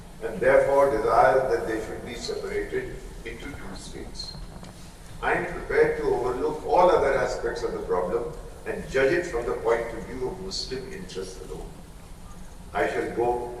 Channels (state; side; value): identical; both; correlation 1.00